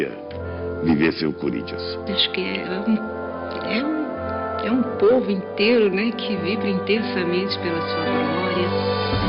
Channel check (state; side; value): identical; both; correlation 1.00